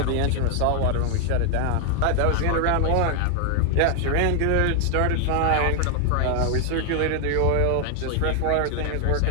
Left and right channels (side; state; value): both; different; correlation 0.00